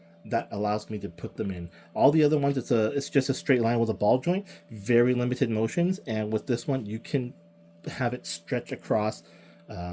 that allows me to put them in. All the other ones, it's just a straight line with a ball joint, very limited motions. And with this one, you can have it stretch across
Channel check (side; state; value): both; identical; correlation 1.00